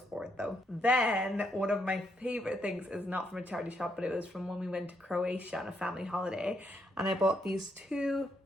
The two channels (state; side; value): normal; both; correlation 0.76